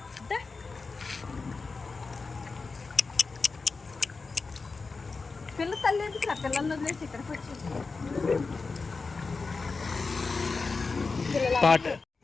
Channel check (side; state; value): right; quieter; 4.2 dB